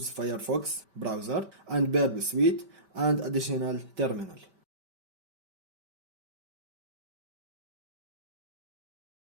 Firefox browser and Burp Suite and additional terminal.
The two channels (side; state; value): left; late; 5.1 ms